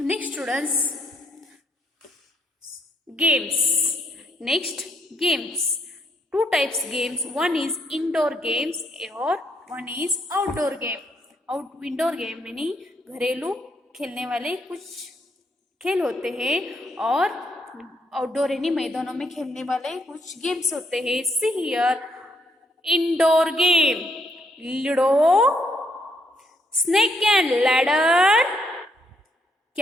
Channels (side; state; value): both; normal; correlation 0.73